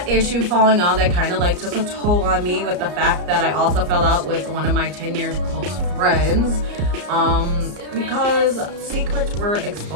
issue falling out, that kind of like took a toll on me, with the fact that I also fell out with one of my 10 years close friends, because secrets were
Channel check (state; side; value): late; left; 34 ms